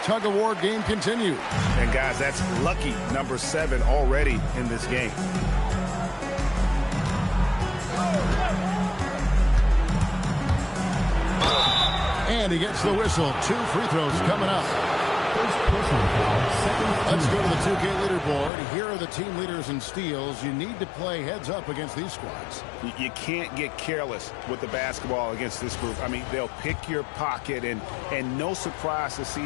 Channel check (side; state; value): right; drops out; at 18.5 s